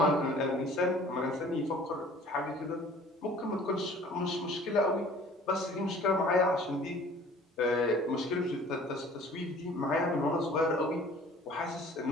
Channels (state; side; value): normal; both; correlation 0.50